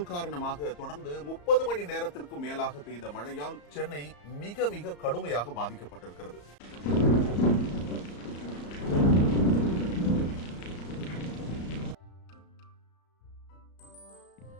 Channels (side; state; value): right; late; 34 ms